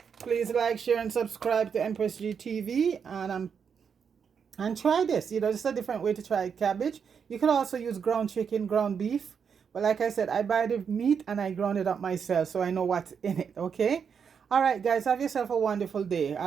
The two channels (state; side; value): quieter; left; 6.8 dB